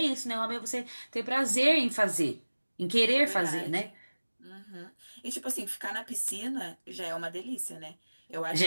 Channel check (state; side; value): inverted; both; correlation -1.00